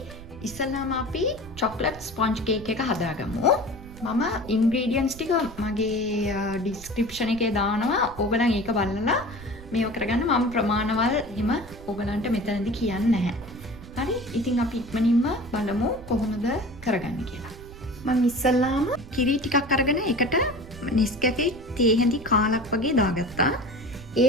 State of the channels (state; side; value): noise; right; rumble, 16 dB below the sound